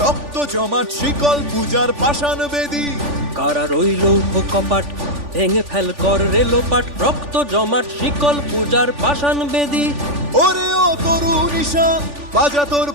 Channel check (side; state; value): left; late; 3.5 ms